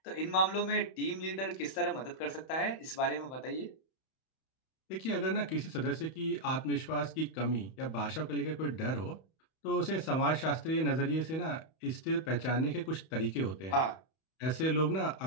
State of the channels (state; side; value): late; right; 31 ms